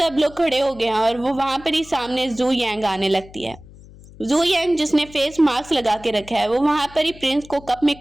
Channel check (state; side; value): noise; left; hum, 21 dB below the sound